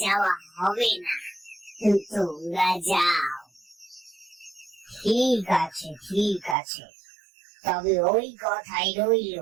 যাওয়া হবে না, তোমরা যাও। ঠিক আছে, ঠিক আছে, তবে ওই কথাই রইল,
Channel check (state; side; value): drops out; left; at 6.6 s